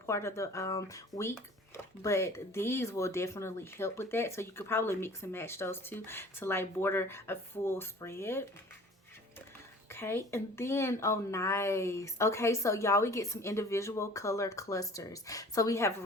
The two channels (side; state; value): both; normal; correlation 0.46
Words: of the week, but these will definitely help with that. So you could probably mix and match those two to like border a full spread. Okay, and then, oh nice. Okay, so y'all, we get some individual color clusters. So we have